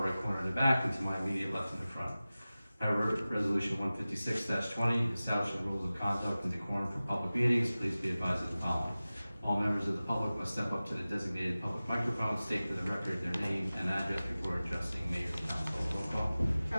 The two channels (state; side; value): inverted; both; correlation -0.97